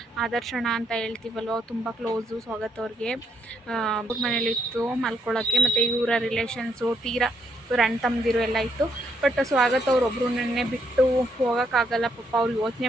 ಆದರ್ಶಣ ಅಂತ ಹೇಳ್ತೀವಲ್ವ, ತುಂಬ ಕ್ಲೋಸು ಸ್ವಾಗತ ಅವ್ರಿಗೆ. ಅವ್ರ ಮನೇಲಿತ್ತು ಮಲ್ಕೊಳ್ಳೋಕ್ಕೆ, ಮತ್ತು ಇವರ ರಿಲೇಷನ್ಸು ತೀರಾ ಇವ್ರ ಅಣ್ಣ ತಮ್ಮದಿರು ಎಲ್ಲ ಇತ್ತು. ಬಟ್ ಸ್ವಾಗತ ಅವ್ರೊಬ್ಬರು ನೆನ್ನೆ ಬಿಟ್ಟು ಹೋಗೋಕ್ಕಾಗಲ್ಲ ಪಾಪ, ಅವ್ರು ಯೋಚನೆ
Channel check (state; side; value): normal; both; correlation 0.74